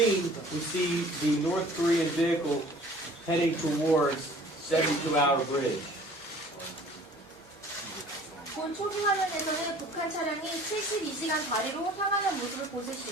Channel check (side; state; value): both; normal; correlation 0.50